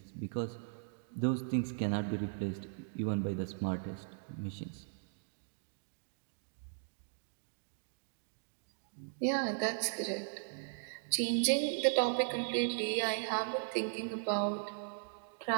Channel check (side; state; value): left; silent; digital silence